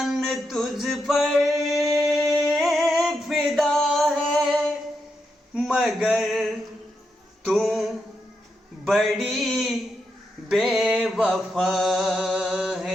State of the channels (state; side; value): normal; both; correlation 0.84